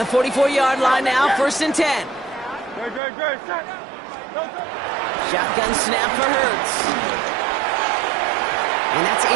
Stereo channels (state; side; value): drops out; left; at 3.0 s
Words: 44-yard line now, 1st and 10. Shotgun snap for Hurts. And that's